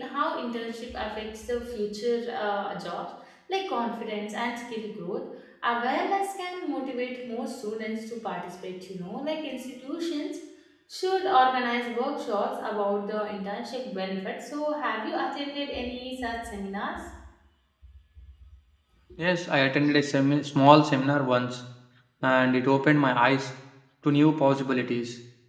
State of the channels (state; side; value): identical; both; correlation 1.00